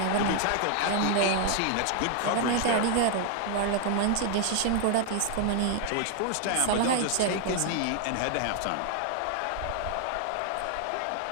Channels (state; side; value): different; both; correlation 0.00